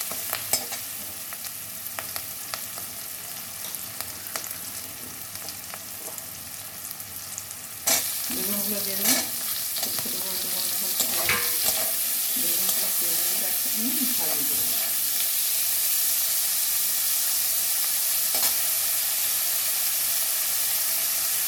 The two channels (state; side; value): identical; both; correlation 1.00